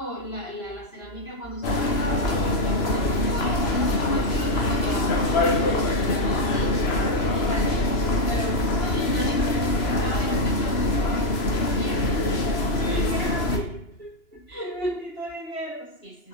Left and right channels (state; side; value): late; right; 3.0 ms